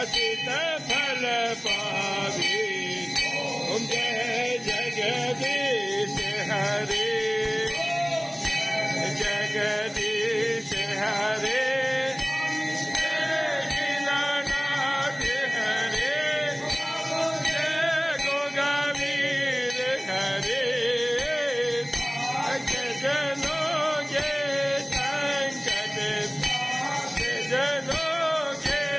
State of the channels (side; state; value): both; identical; correlation 1.00